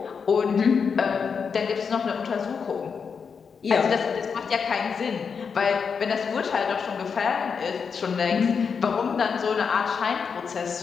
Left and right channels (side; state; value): right; quieter; 6.0 dB